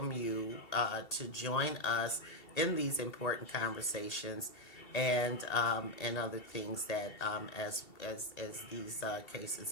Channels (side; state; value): right; late; 2.7 ms